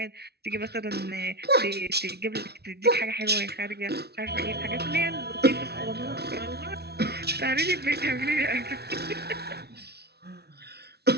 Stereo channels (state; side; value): late; left; 0.48 ms